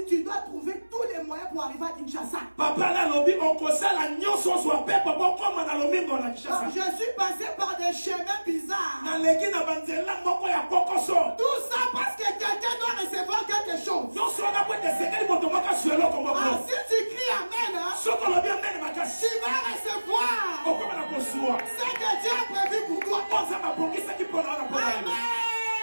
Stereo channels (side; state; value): both; inverted; correlation -1.00